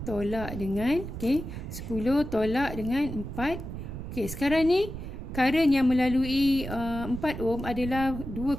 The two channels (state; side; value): noise; right; rumble, 8 dB below the sound